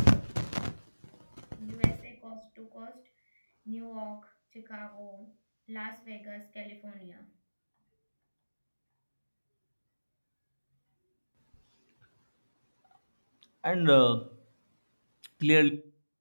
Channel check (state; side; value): inverted; both; correlation -1.00